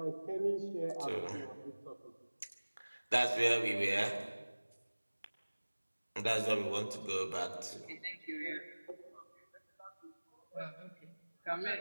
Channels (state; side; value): inverted; both; correlation -1.00